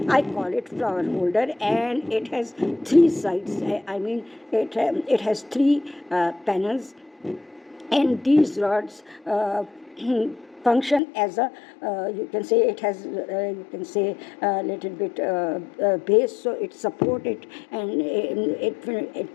I call it flower holder, and it has three sides. I mean, it has three panels, and these rods function as a you can say it has you can say a little bit base, so it support it, and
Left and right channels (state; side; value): drops out; right; at 11.0 s